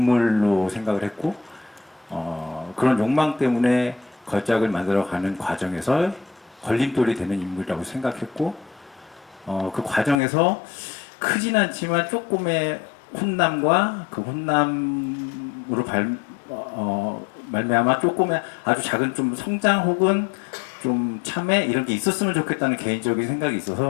생각을 했고, 그런 욕망 때문에 걸작을 만들어가는 과정에서 걸림돌이 되는 인물이라고 생각했고, 그 과정에서 크진 않지만 조금의 혼남과 그 혼남으로 말미암아 조금의 아주 작은 좀 성장 혹은 좀 참회 이런 게 있었으면 좋겠다는 개인적인 생각이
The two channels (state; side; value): drops out; right; at 10.2 s